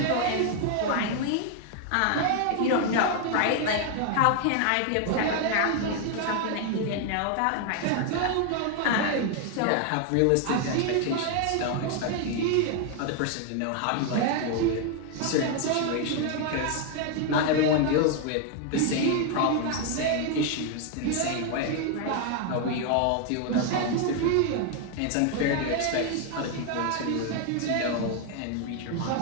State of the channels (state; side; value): different; both; correlation 0.00